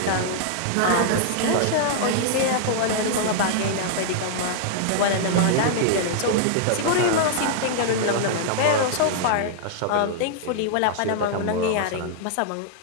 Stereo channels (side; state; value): both; different; correlation -0.01